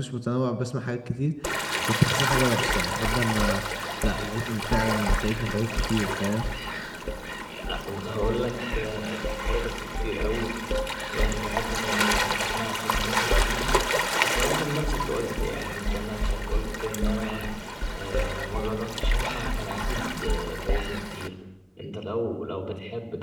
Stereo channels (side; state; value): both; identical; correlation 1.00